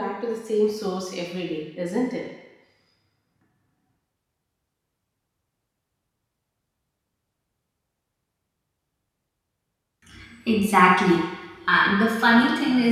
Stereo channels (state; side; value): identical; both; correlation 1.00